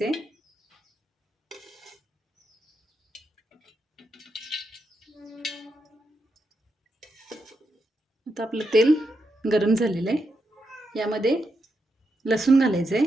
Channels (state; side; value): normal; both; correlation 0.84